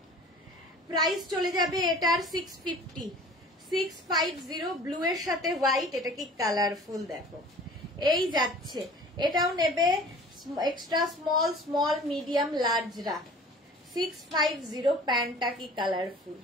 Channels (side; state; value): both; normal; correlation 0.45